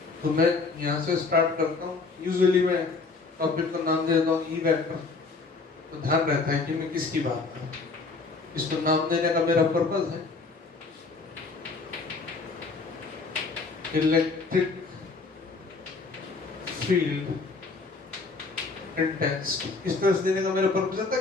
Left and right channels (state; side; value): quieter; right; 4.1 dB